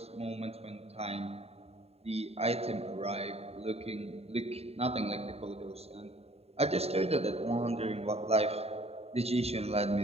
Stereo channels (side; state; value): left; late; 0.30 ms